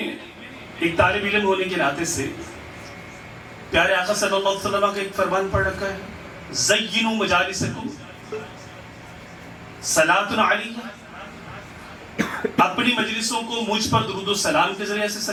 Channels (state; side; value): identical; both; correlation 1.00